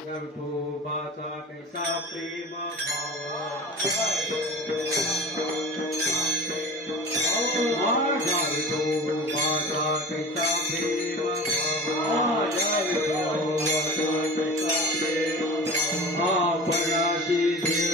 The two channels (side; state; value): both; normal; correlation 0.36